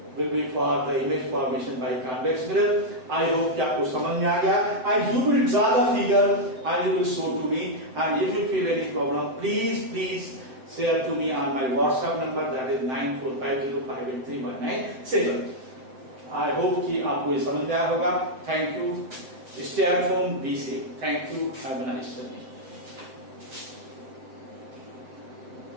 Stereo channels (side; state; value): left; late; 7.9 ms